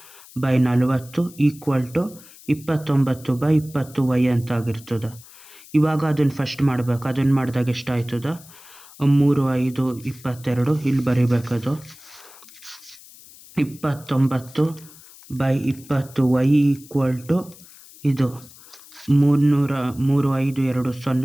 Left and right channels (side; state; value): left; noise; hiss, 21 dB below the sound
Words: by 40 equal to 29 by 20 y ಅಂತ ಆಗಿರ್ತದೆ. ಇವಾಗ ಅದನ್ನು ಫಸ್ಟ್ ಮಾಡಬೇಕು. ಅದನ್ನು ಮಾಡಿದಾಗ ಎಷ್ಟಾಯ್ತದ 3 5 22 ಇಲ್ಲಿ ಬರೀಬೇಕದು 29 ಬೈ 20 ವೈ ಈಕ್ವಲ್ ಟು ಇದು 3 5 2